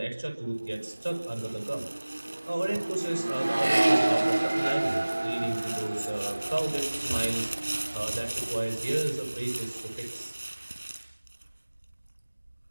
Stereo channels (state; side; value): inverted; both; correlation -1.00